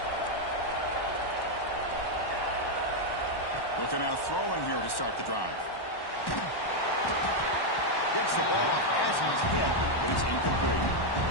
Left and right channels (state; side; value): late; right; 1.1 ms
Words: Looking out throwing here to start the drive. Gets the ball off as he's hit, but it's incomplete.